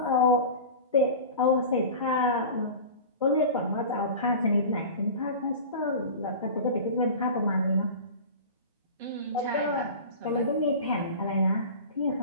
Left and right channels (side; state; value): both; inverted; correlation -0.34